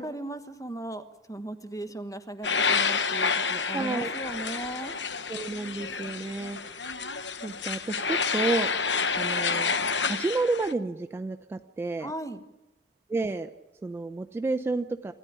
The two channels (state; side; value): normal; both; correlation 0.26